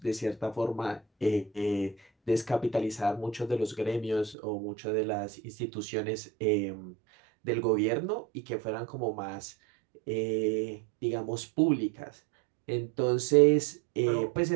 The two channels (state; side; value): drops out; left; at 4.4 s